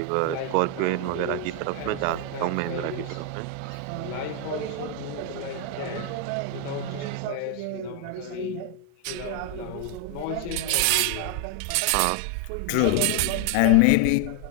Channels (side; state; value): both; different; correlation 0.00